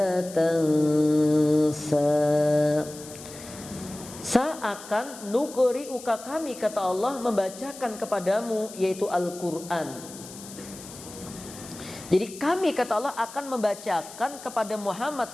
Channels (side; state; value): left; noise; hiss, 15 dB below the sound